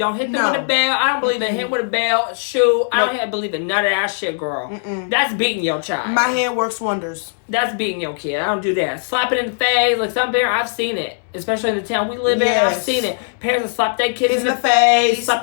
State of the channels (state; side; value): silent; right; digital silence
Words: hit them with a bell. I don't believe in hitting with a bell, shoe. I don't believe in none of that shit, girl. That's beating your child. My hand works wonders. That's beating your kid. I don't do that. Slap it in the face. Like some parents, I've seen it. Especially in the town we live in, I've seen it. Parents will slap their kids in the face,